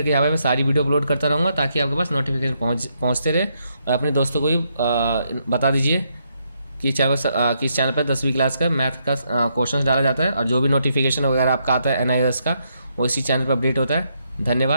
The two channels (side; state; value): both; inverted; correlation -0.77